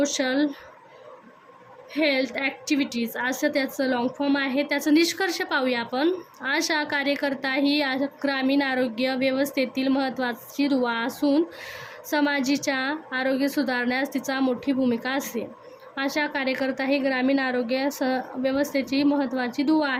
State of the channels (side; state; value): both; identical; correlation 1.00